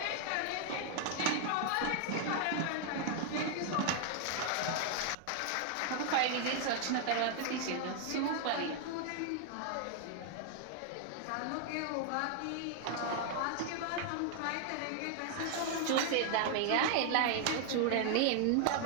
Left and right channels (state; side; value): different; both; correlation 0.00